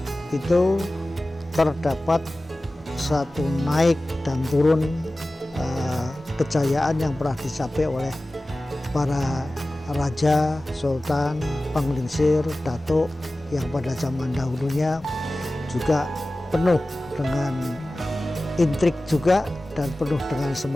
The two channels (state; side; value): normal; both; correlation 0.96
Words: itu terdapat satu naik dan turun kejayaan yang pernah dicapai oleh para raja, sultan, penglingsir, datuk yang pada zaman dahulunya juga penuh dengan intrik juga dan penuh dengan